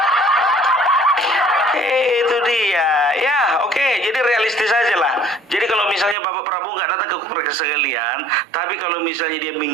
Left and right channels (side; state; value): left; drops out; at 6.2 s